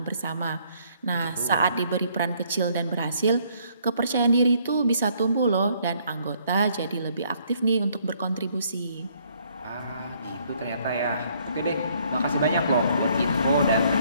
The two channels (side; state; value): both; inverted; correlation -0.66